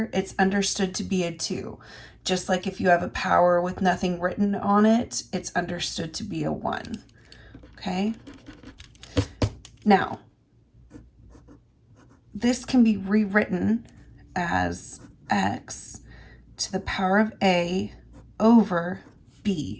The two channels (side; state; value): both; identical; correlation 1.00